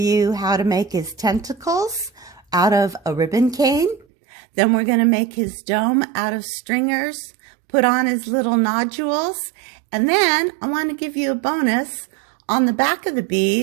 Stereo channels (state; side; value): drops out; left; at 4.0 s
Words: how to make his tentacles out of a ribbon cane. Then we're going to make his dome out of stringers, put on his little nodules, and then I want to give you a bonus. On the back of the